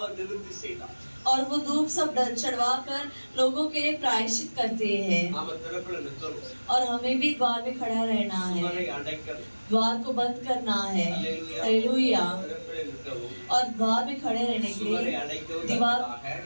நிவர்த்தி செய்தான்। और वो धूप सब चढ़वा कर लोगों के लिए प्रायश्चित करते हैं। நாம திறப்புல நிற்கிறோம், और हमें भी द्वार में खड़ा रहना है, சுவரை அடைக்கணும்। द्वार को बंद करना है। हालेलुया। हालेलुया। திறப்புல நிற்கவும், और द्वार में खड़े रहने के சுவரை लिए, அடைக்கவும் दीवार தக்கதாக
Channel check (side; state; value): both; inverted; correlation -1.00